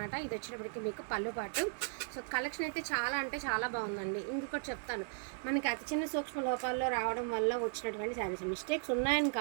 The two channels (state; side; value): silent; left; 53 dB below the other